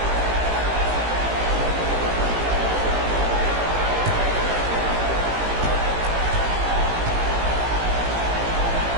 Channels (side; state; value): left; late; 18 ms